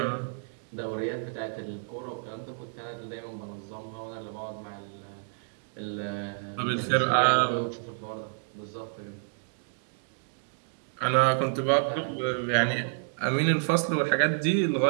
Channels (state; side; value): silent; left; digital silence